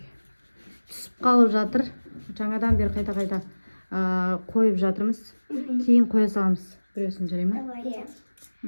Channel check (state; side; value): inverted; both; correlation -1.00